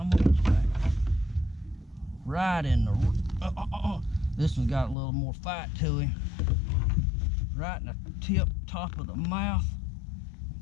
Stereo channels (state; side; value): drops out; right; at 5.0 s